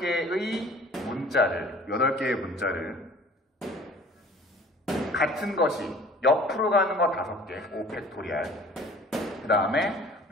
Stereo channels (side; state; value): both; normal; correlation 0.49